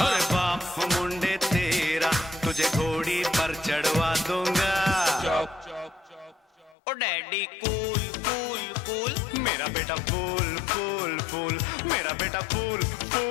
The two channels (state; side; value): drops out; right; at 6.8 s